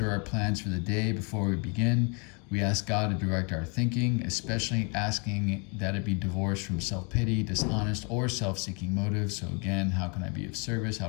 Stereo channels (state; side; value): quieter; right; 34.4 dB